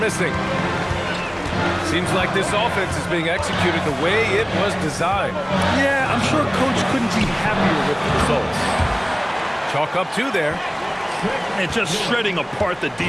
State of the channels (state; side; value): identical; both; correlation 1.00